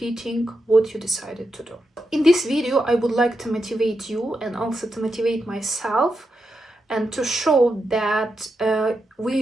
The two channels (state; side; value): normal; both; correlation 0.86